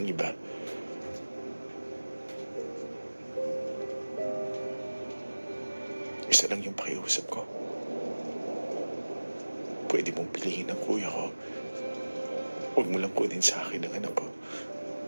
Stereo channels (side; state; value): both; inverted; correlation -1.00